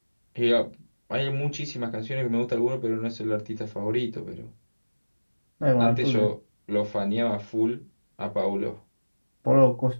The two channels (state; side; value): inverted; both; correlation -1.00